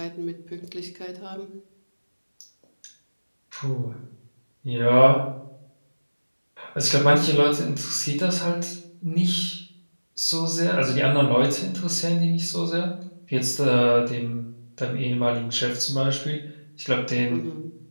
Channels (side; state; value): both; inverted; correlation -1.00